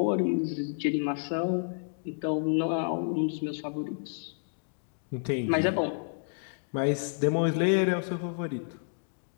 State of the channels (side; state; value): right; silent; digital silence